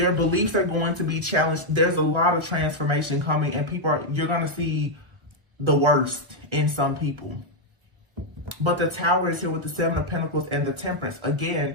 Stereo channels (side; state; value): left; late; 1.0 ms